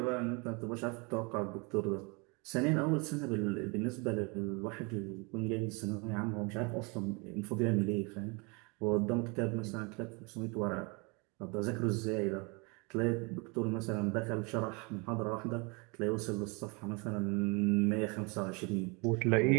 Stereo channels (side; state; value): left; quieter; 30.2 dB